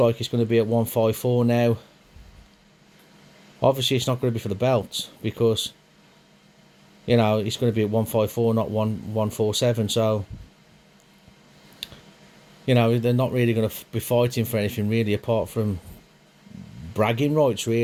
it's going to be at 154 now. Obviously it's not going to be for the belt, because you know it's going to be at 154, not 147. So you know they're not really going to be fighting for anything really, apart from bragging rights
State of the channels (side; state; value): both; identical; correlation 1.00